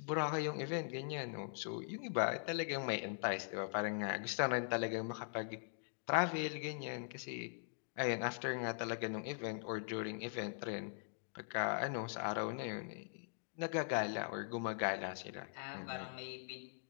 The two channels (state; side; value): silent; right; digital silence